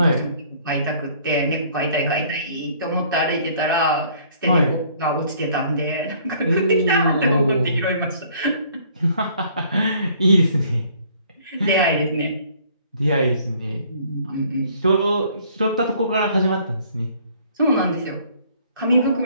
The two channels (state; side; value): inverted; both; correlation -0.58